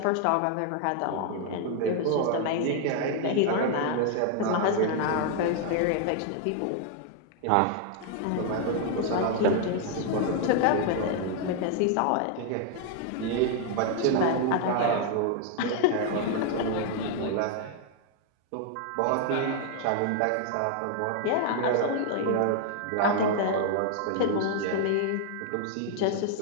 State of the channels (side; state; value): both; different; correlation 0.00